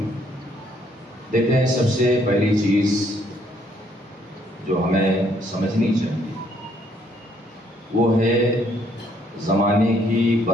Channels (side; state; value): both; normal; correlation 0.68